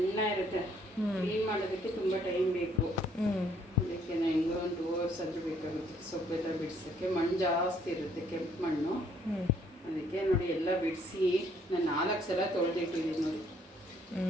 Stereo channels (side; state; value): both; normal; correlation 0.65